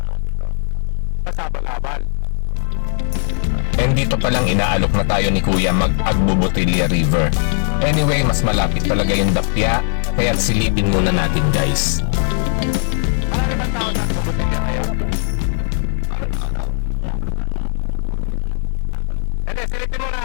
Pasabal-abal. And dito palang inaalok na tayo ni Kuya mag-Agbubutilya River. Anyway, mas malapit talaga yung Dapya, kaya silipin muna natin guys. Marami bang tao sa Agbubutilya ngayon? Hindi, silipin muna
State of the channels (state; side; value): silent; right; 62 dB below the other